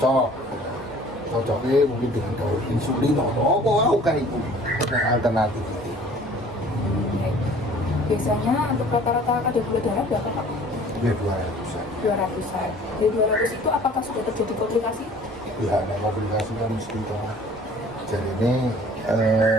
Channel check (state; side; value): normal; both; correlation 0.50